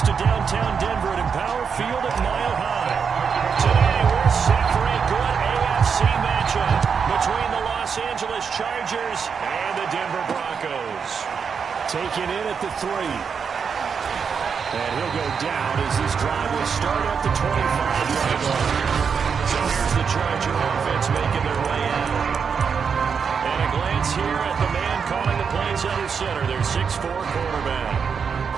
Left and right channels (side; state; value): left; quieter; 6.3 dB